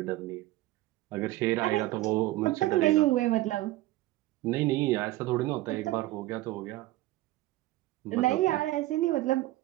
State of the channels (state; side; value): quieter; left; 17.2 dB